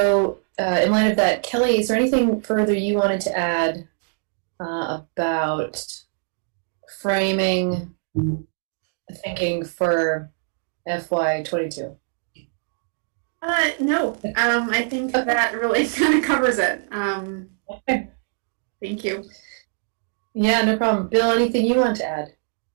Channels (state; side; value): silent; left; digital silence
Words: in light of that, Kelly, is there anything further you wanted to add about framing thinking for FY22? No. I think that really kind of covers it. Okay. Thank you. Yeah, no problem. Bill, anything you want to add?